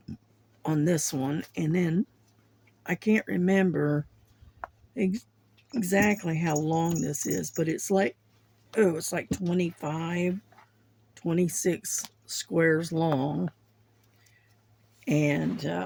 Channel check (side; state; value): both; identical; correlation 1.00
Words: on this one. And then I can't remember exactly how long this is, but it's like, oh, it's like 25, 26 squares long. And,